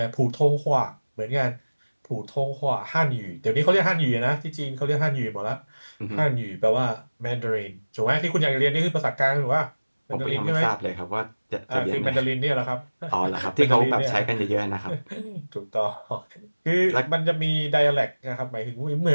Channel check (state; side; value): inverted; both; correlation -1.00